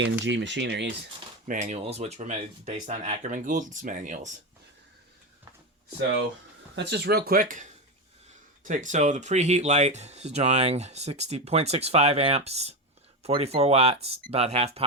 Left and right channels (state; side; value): normal; both; correlation 0.15